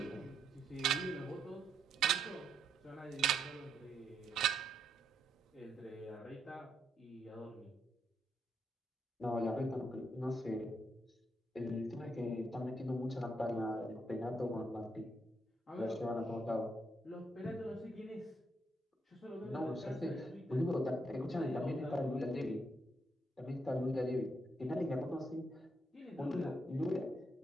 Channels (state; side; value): normal; both; correlation 0.77